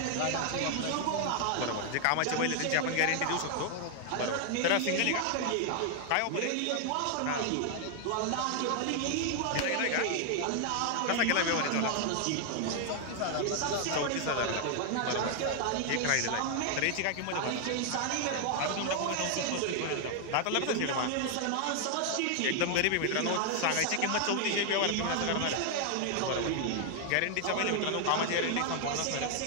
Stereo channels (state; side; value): different; both; correlation 0.00